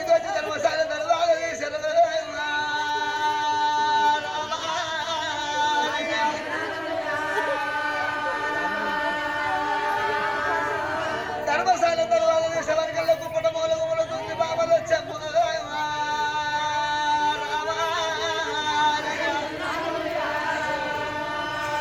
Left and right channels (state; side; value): noise; right; rumble, 27 dB below the sound